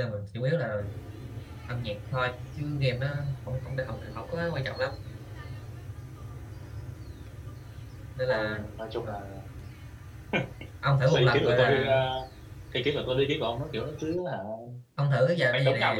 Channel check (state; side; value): identical; both; correlation 1.00